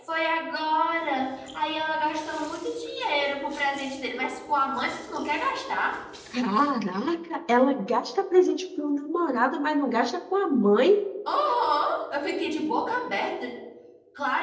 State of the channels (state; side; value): identical; both; correlation 1.00